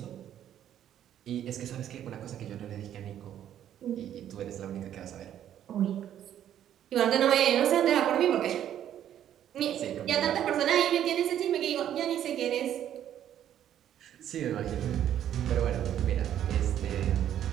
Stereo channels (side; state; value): left; quieter; 10.7 dB